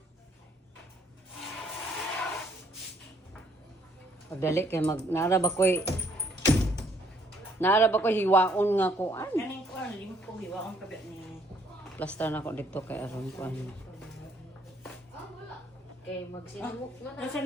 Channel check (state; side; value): normal; both; correlation 0.66